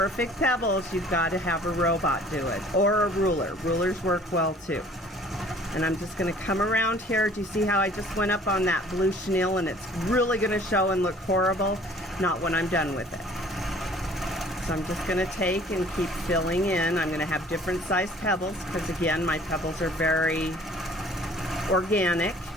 pebbles, you've got to have a robot do it, or a ruler. Rulers work well too. And I'm just going to come around here. Do you see how I just went up on that blue chenille and it's really going to show and look horrible? Not when I'm done with it. So I'm just going to take and keep filling in. I'm going to have different sized pebbles because again, my pebbles are very organic.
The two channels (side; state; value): both; normal; correlation 0.53